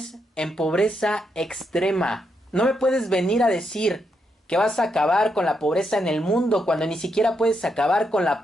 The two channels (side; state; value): both; normal; correlation 0.80